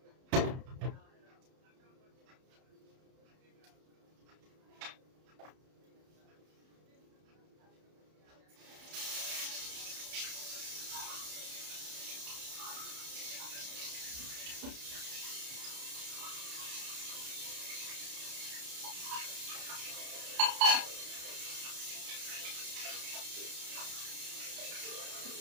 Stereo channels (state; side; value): late; left; 31 ms